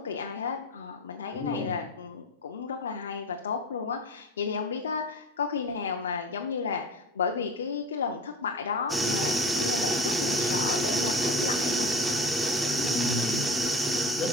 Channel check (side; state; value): both; normal; correlation 0.32